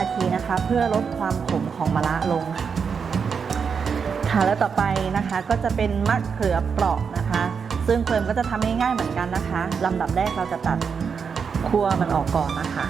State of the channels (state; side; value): quieter; left; 6.2 dB